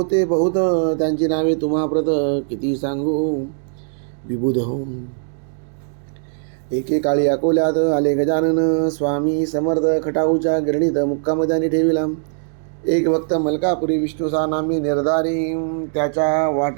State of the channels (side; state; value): left; silent; digital silence